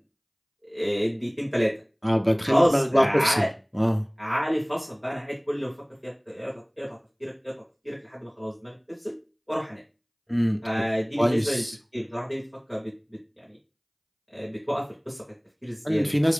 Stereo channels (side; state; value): both; identical; correlation 1.00